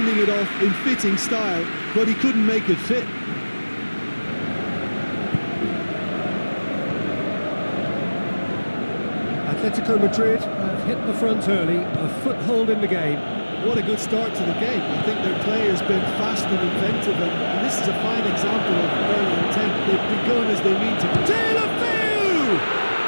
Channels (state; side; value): inverted; both; correlation -1.00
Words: it off in fitting style, but he couldn't make it fit. Atletico Madrid have hit the front early, a foothold in the game. What a good start to the game. I think their play has been fast and inventive, and this is a fine example of early intent. They've begun as they mean to. Taylor-Few!